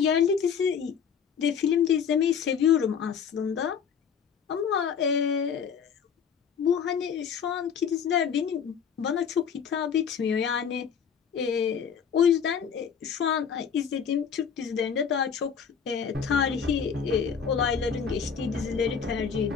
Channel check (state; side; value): quieter; right; 7.1 dB